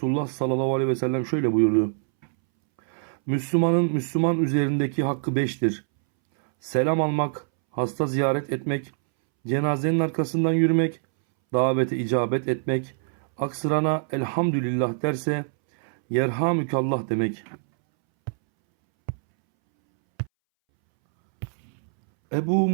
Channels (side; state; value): left; silent; 62 dB below the other